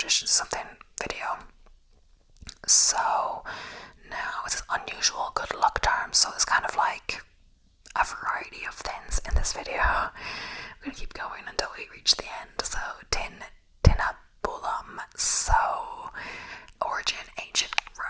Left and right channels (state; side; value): identical; both; correlation 1.00